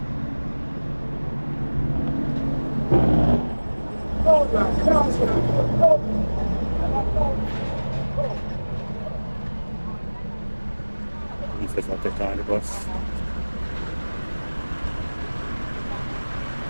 He says I'll take on the bus.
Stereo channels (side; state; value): both; inverted; correlation -1.00